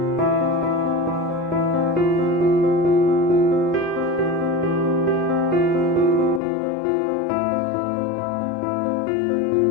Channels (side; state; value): right; drops out; at 6.4 s